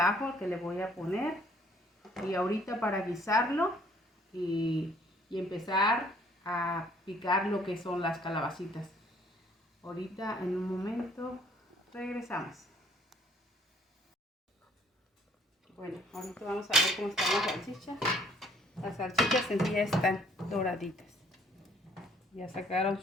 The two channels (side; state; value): both; normal; correlation 0.61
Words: que le voy a poner. Y ahorita para guisarlo y empezar a picar lo que son las calabacitas. Ahorita en un momento regresamos. Bueno, ahorita vamos a ver cómo están las salchichas. Las salchichas en sí ya están doraditas. Ya sacaron